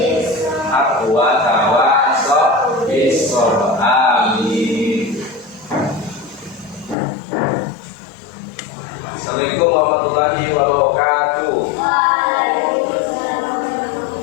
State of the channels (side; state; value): right; drops out; at 7.0 s